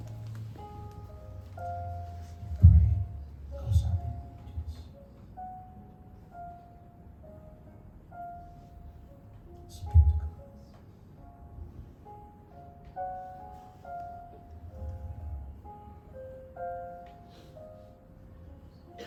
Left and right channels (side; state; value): both; identical; correlation 1.00